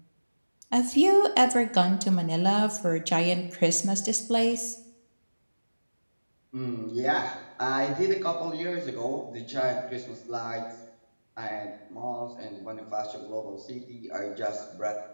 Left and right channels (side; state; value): both; inverted; correlation -1.00